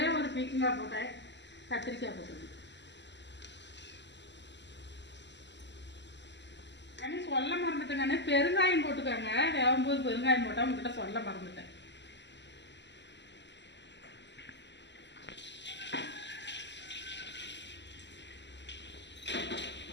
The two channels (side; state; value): right; late; 0.51 ms